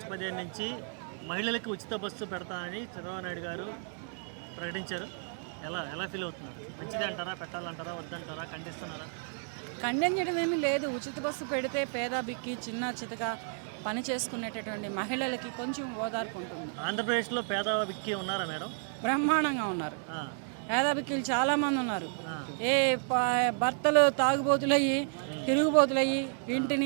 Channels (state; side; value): silent; left; 56 dB below the other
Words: 15 నుంచి మహిళలకు ఉచిత బస్సు పెడతానని చంద్రబాబు నాయుడు గారు ప్రకటించారు. ఎలా ఎలా ఫీల్ అవుతున్నారు? మంచిది అంటారా, పెట్టాలంటారా, వద్దంటారా, ఖండిస్తున్నారా? ఖండించడం ఏమీ లేదు. ఉచిత బస్సు పెడితే పేద బిక్కి చిన్న చితక పని చేసుకునేటటువంటి మహిళలకి కొంచెం ఓదార్పు ఉంటుంది. ఆంధ్రప్రదేశ్లో పేద విక్కి ఉన్నారా మేడం? బ్రహ్మాండంగా ఉన్నారు. ఆ, పేద బిక్కీలు చాలామంది ఉన్నారు. ఆ, ఏ భర్తలు తాగుబోతులయ్యి తిరుగుబోతులయ్యి